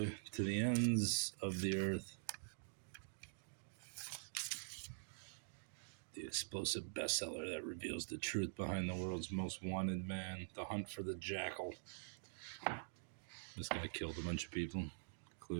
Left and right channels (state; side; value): silent; left; digital silence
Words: To the ends of the earth. The explosive bestseller that reveals the truth behind the world's most wanted man. The hunt for the jackal. This guy killed a bunch of people,